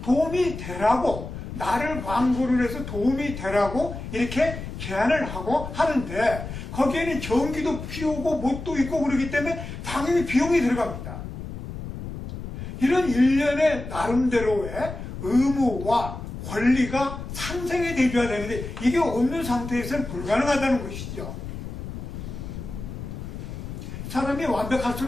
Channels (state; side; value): noise; left; rumble, 9 dB below the sound